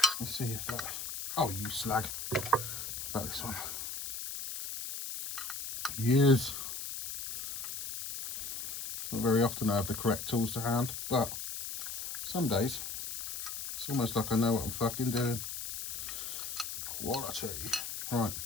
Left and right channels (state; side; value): noise; left; hiss, 6 dB below the sound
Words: Let's see if that, oh you slag, about this one. Years. It's not very often I have the correct tools to hand, but some days it's almost like I know what I'm fucking doing. Quality. Right,